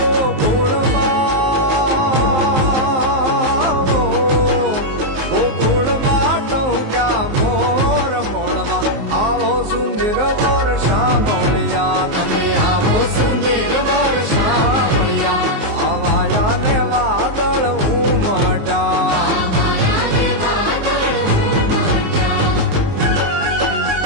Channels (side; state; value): left; late; 19 ms